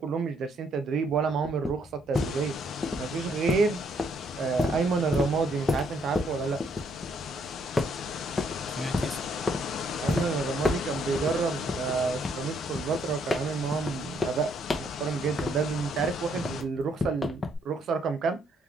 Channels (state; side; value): normal; both; correlation 0.70